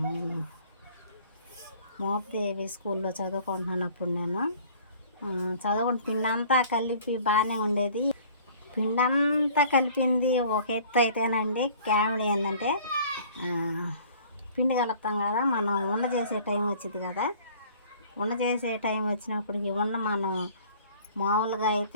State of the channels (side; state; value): both; inverted; correlation -0.51